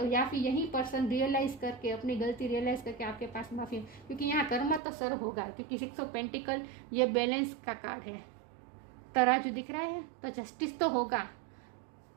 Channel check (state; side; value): drops out; left; at 4.8 s